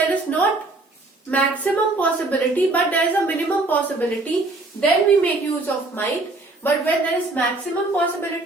is not maximum possibility but there is a minimum possibility, then we make use of might. But when there is maximum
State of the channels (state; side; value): quieter; left; 3.1 dB